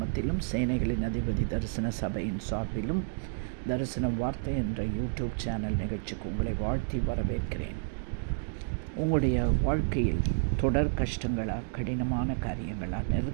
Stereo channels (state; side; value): silent; left; digital silence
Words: சேனைகளின் அதிபதி தரிசன சபையின் சார்பிலும் தரிசன வார்த்தை என்ற யூடியூப் சேனல் நிகழ்ச்சிக்கு உங்களை வாழ்த்தி வரவேற்கிறேன். உங்களுடைய வாழ்க்கையில் தொடர் கஷ்டங்களா, கடினமான காரியங்களா,